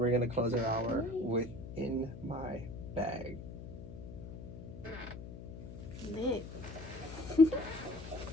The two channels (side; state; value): left; noise; hum, 11 dB below the sound